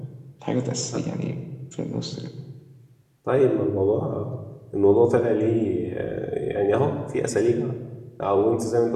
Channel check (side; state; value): both; identical; correlation 1.00